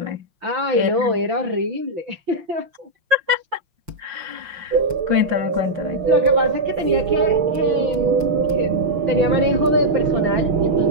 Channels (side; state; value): left; late; 5.7 ms